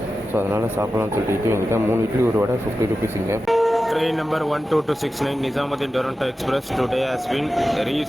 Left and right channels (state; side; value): normal; both; correlation 0.93